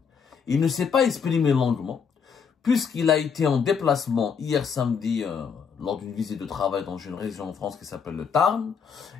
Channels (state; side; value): quieter; right; 6.4 dB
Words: Il ne s'est pas exprimé longuement, puisqu'il a été en déplacement hier samedi lors d'une visite de travail dans une région en France qui s'appelle le Tarn,